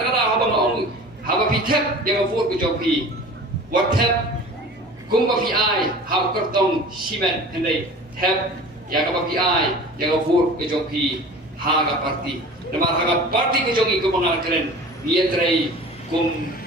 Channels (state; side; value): normal; both; correlation 0.40